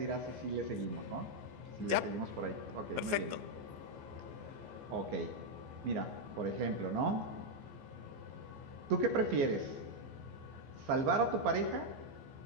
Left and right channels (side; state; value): left; late; 14 ms